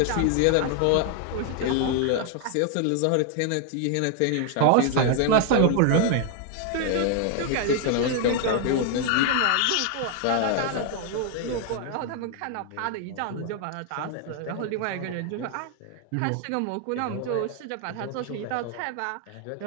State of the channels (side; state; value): both; different; correlation 0.00